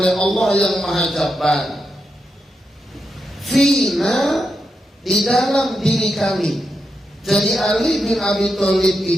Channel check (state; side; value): normal; both; correlation 0.86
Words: Allah yang Maha Jabbar, fina, di dalam diri kami. Jadi Ali bin Abi Thalib